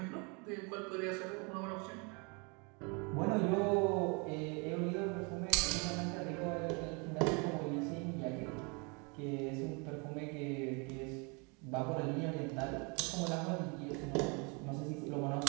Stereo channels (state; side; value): quieter; left; 31.9 dB